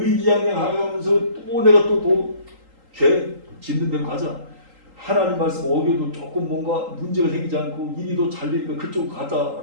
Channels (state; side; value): late; left; 3.8 ms